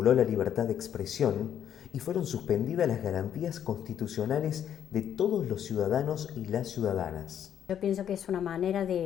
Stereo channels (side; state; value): right; quieter; 9.5 dB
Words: la libertad de expresión y fueron suspendidas las garantías constitucionales de todos los ciudadanos y las ciudadanas. Yo pienso que es una manera